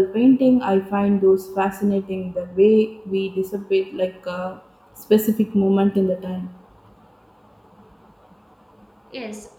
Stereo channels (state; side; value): identical; both; correlation 1.00